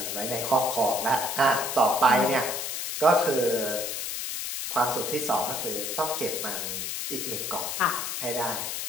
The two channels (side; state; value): left; noise; hiss, 3 dB below the sound